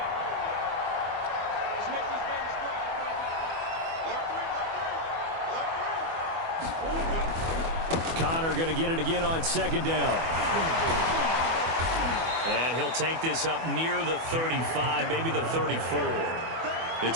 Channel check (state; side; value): late; left; 24 ms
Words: Connor going to get it again on second down. And he'll take this up near the 35, maybe the 34.